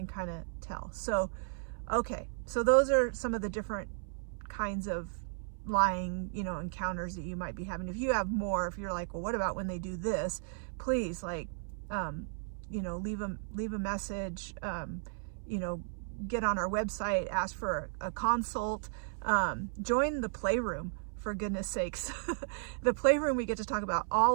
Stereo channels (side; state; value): left; silent; 55 dB below the other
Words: kind of tell. So okay, so those are some of the different kinds of lying encounters that you might be having. If you have more, if you're like, well, what about when they do this, please, like, leave a message, get on our website, ask for a consult, join the Playroom, for goodness sakes. The Playroom, we get to talk about